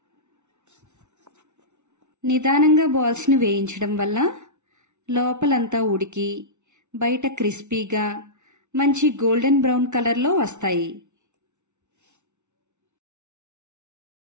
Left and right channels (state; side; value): late; left; 0.83 ms